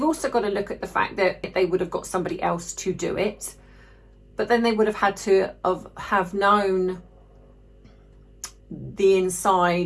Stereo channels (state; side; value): identical; both; correlation 1.00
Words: also got to look at the fact that they would have got somebody else to do it. But then they would have had to have known the